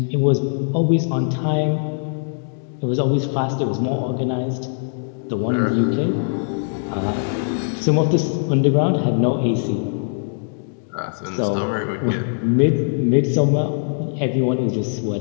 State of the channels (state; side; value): silent; right; digital silence